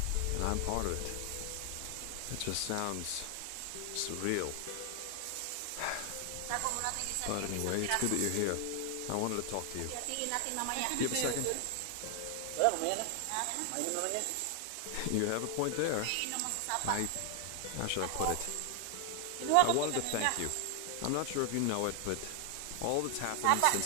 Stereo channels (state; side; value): different; both; correlation 0.00